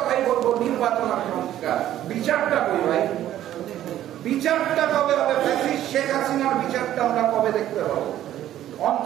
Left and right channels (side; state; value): left; quieter; 12.4 dB